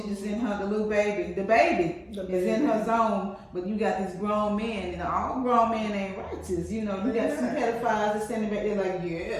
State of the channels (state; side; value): identical; both; correlation 1.00